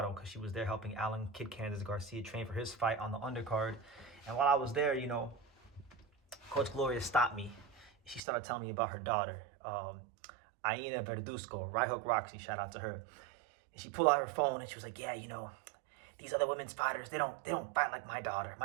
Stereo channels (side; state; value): left; drops out; at 8.2 s